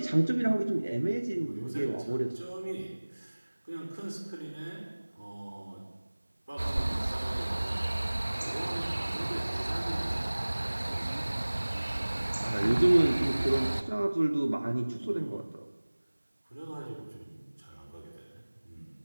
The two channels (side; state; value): both; inverted; correlation -1.00